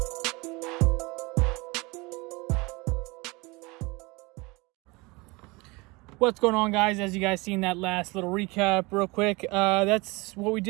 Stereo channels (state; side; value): quieter; left; 25.2 dB